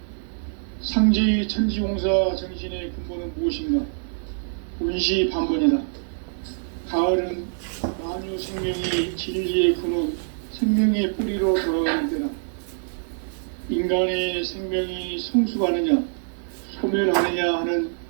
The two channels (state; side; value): silent; left; digital silence